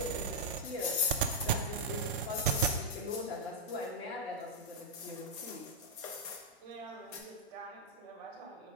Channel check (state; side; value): normal; both; correlation -0.05